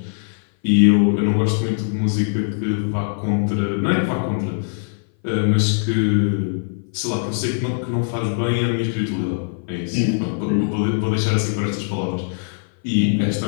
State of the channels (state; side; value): silent; right; 58 dB below the other